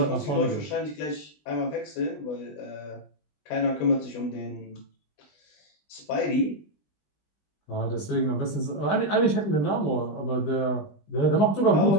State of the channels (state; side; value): late; right; 20 ms